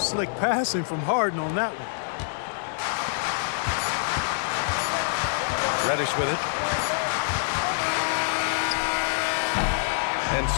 passing from Harden on that one. Reddish with it. And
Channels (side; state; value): right; silent; digital silence